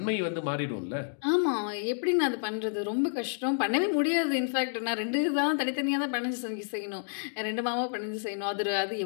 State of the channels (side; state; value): right; silent; digital silence